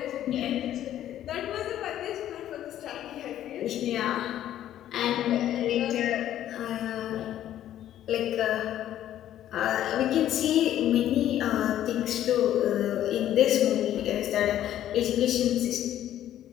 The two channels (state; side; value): quieter; right; 11.9 dB